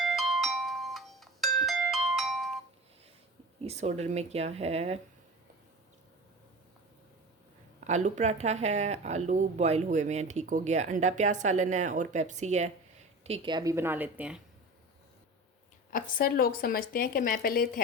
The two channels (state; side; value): normal; both; correlation 0.33